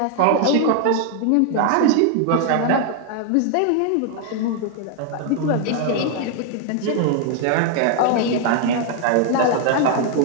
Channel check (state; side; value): different; both; correlation 0.00